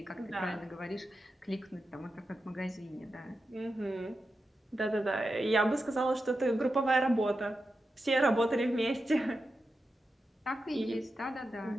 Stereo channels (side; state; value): both; normal; correlation 0.90